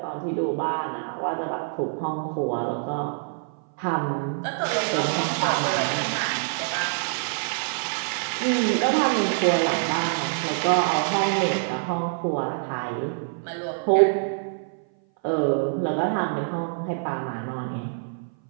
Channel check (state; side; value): silent; left; 57 dB below the other